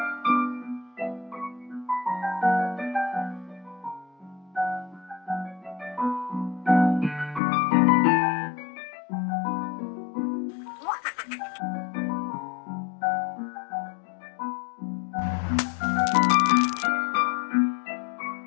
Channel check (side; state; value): right; drops out; at 7.4 s